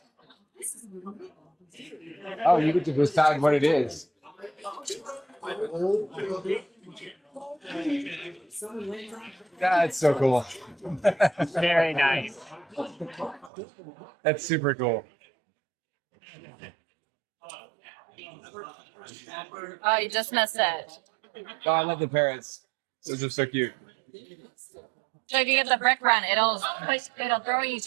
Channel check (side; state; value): left; drops out; at 13.5 s